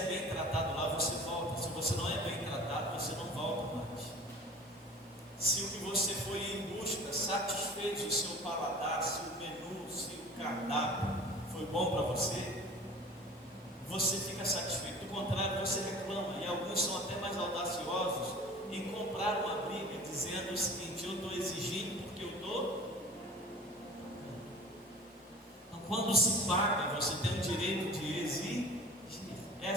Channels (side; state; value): both; normal; correlation 0.41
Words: bem tratado lá, você volta. Se você não é bem tratado, você não volta mais. Se o que você foi em busca satisfez o seu paladar, se o menu, se o cardápio foi bom para você, você fica satisfeito. Do contrário, você reclama. E alguns são até mais audaciosos em comprar uma briga, dizendo o seguinte: eu estou exigindo porque eu estou. Então, quando se paga, você tem o direito de exigir.